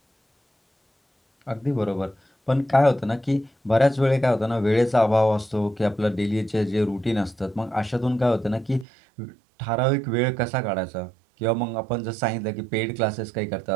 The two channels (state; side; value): drops out; left; at 8.8 s